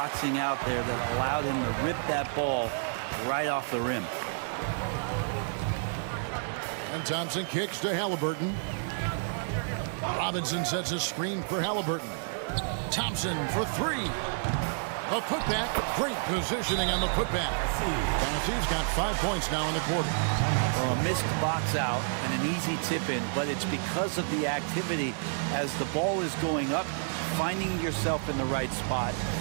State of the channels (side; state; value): left; silent; digital silence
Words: out there that allowed him to rip that ball right off the rim. And Thompson kicks to Halliburton. Robinson sets a screen for Halliburton. Thompson for 3. A putback. Great positioning on the putback. Tennessee's got 5 points now in the quarter. Well, a missed box out and an easy tip in, but it's because of the activity as the ball is going up, finding yourself in the right spot,